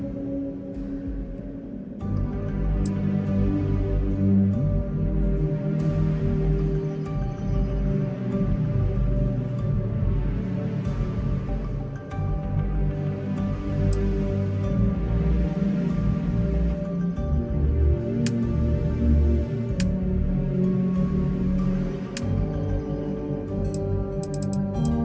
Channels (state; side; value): identical; both; correlation 1.00